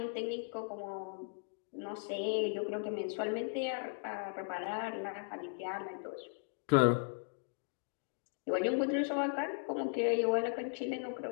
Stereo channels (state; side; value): silent; right; digital silence